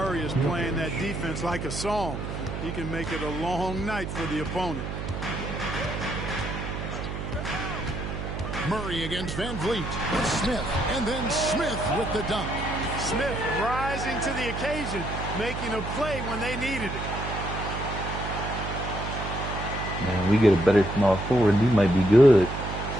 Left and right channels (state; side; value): noise; right; hum, 5 dB below the sound